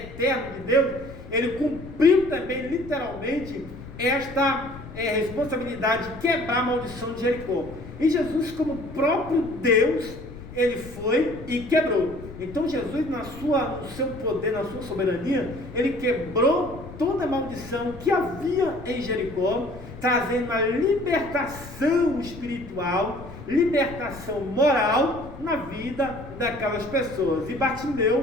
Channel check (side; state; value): left; noise; rumble, 15 dB below the sound